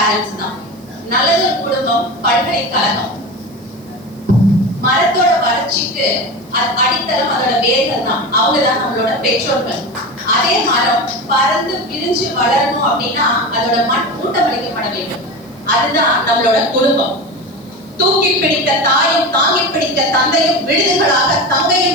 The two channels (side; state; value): right; noise; hiss, 29 dB below the sound